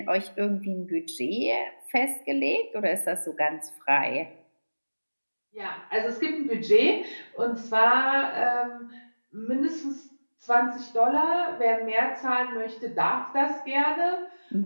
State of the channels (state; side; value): inverted; both; correlation -1.00